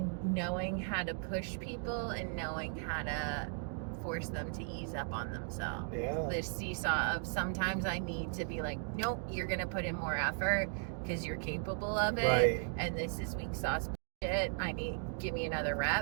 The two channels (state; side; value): silent; left; 53 dB below the other